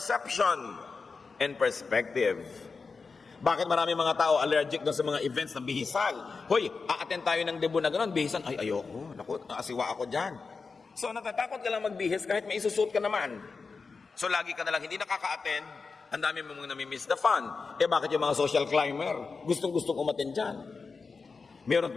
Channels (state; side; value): quieter; right; 4.6 dB